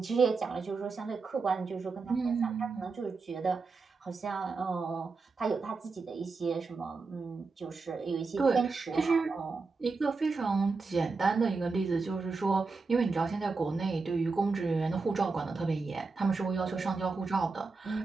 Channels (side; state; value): left; quieter; 4.2 dB